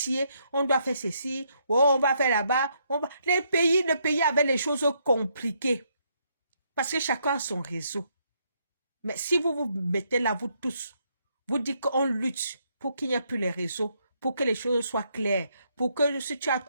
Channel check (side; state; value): both; inverted; correlation -0.74